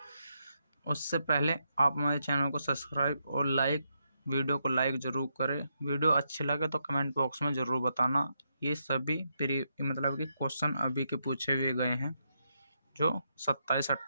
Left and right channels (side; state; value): both; inverted; correlation -0.81